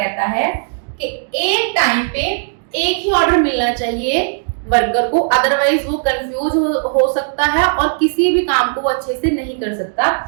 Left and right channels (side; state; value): left; silent; digital silence